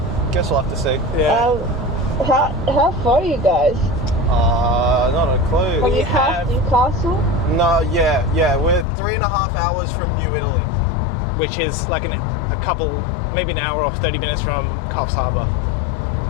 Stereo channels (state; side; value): drops out; right; at 8.8 s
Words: Guess we'll have to see. Yeah. How far are you guys? Not a clue. Have We you passed have- Newcastle? No, yeah. We're 3.5 hours from New Italy. Which is like a couple, maybe an hour or 30 minutes from Coffs Harbour.